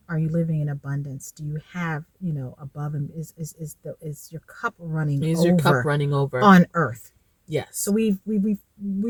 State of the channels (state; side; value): identical; both; correlation 1.00